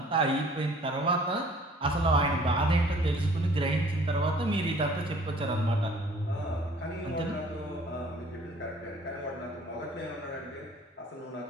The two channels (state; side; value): normal; both; correlation 0.54